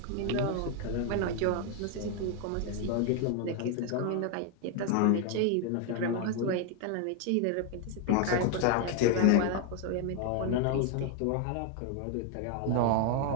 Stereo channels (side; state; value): both; different; correlation 0.01